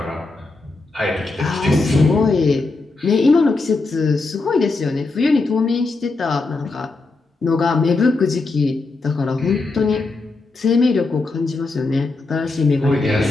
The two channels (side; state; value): right; quieter; 3.5 dB